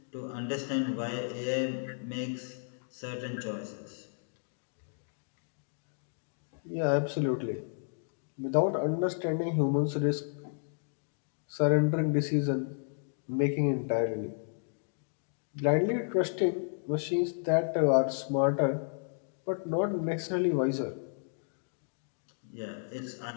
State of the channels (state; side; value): silent; right; digital silence